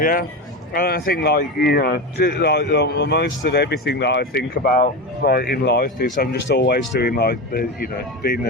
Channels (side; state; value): both; normal; correlation 0.20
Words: And I think, like, you know, like most of everything that I think about, like, in life is I'm just always doing, like, doing